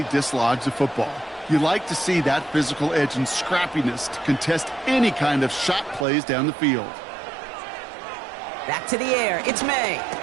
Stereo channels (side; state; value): left; drops out; at 6.1 s